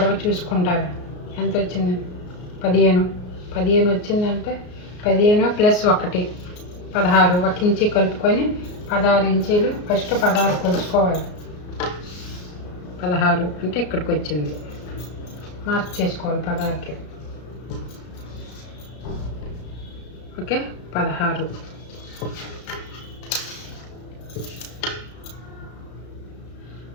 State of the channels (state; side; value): late; right; 33 ms